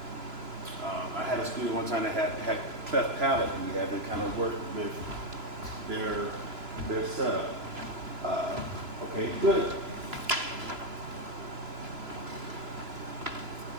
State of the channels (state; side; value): late; left; 3.0 ms